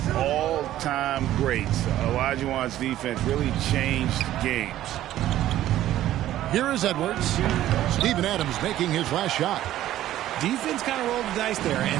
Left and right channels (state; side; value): quieter; left; 13.4 dB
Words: all-time greats. Olajuwon's defense really changed games. Here is Edwards. Steven Adams making his last shot. Defense kind of rolled the dice there,